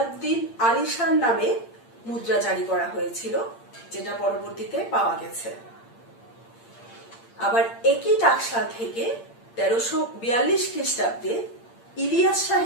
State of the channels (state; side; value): late; right; 8.7 ms